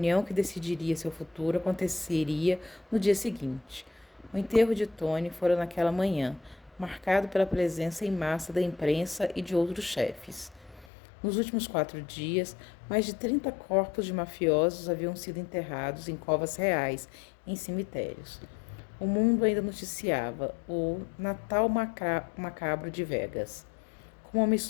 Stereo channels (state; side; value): drops out; right; at 10.9 s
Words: que decidiria seu futuro aconteceria no dia seguinte. O enterro de Tony fora naquela manhã, marcado pela presença em massa da imprensa e de outros chefes. Nos últimos 4 dias, mais de 30 corpos de mafiosos haviam sido enterrados em covas reais, em cemitérios. O mundo ainda noticiava o Natal macabro de Vegas, com uma